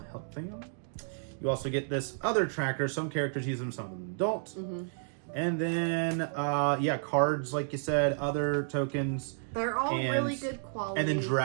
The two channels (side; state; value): left; silent; digital silence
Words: health thing on. You also get this other tracker. Some characters use them, some of them don't. And then, cards, like you said, other tokens. They're all and- really good quality. And then